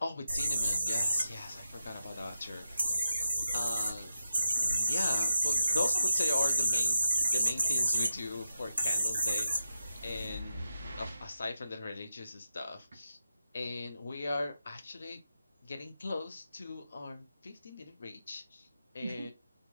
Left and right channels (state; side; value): inverted; both; correlation -0.88